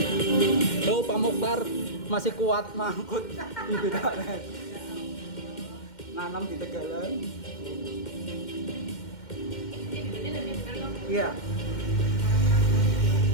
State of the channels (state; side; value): late; right; 2.1 ms